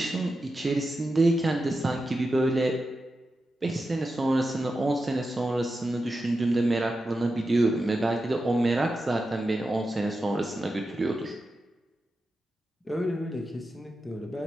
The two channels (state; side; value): normal; both; correlation 0.90